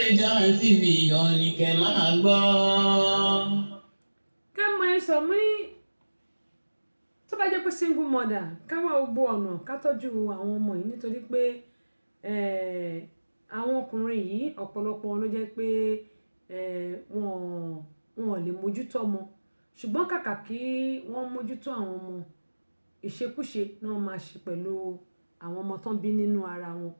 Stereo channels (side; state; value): both; inverted; correlation -1.00